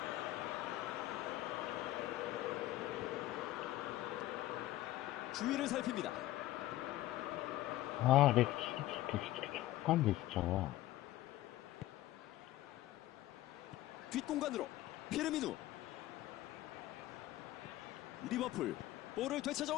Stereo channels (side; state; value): right; quieter; 15.5 dB